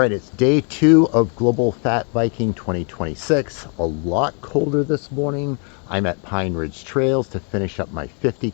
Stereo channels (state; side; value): quieter; right; 39.5 dB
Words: it's day 2 of Global Fat Viking 2026. A lot colder this morning. I'm at Pine Ridge Trails to finish up my